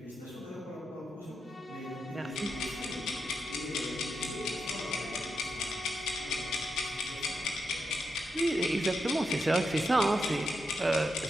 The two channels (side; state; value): both; normal; correlation 0.86